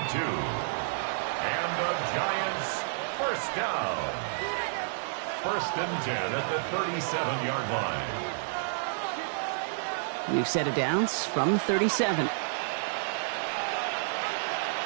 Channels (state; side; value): silent; left; digital silence